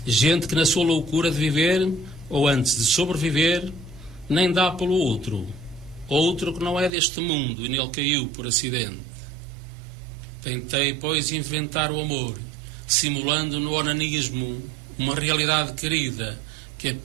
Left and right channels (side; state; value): left; drops out; at 6.9 s